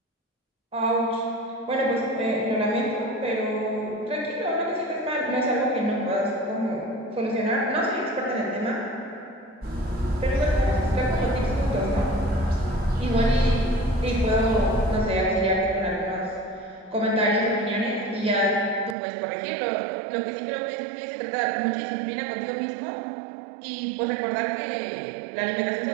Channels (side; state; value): left; drops out; at 18.9 s